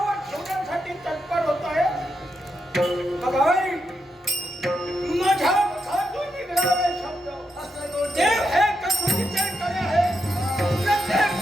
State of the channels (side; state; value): both; normal; correlation 0.84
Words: ठेवण्यासाठी तत्पर होत आहे. बघाय माझ्या मुखातून निघणारे शब्द देव हे कसोटीचे करे आहे. प्रत्येक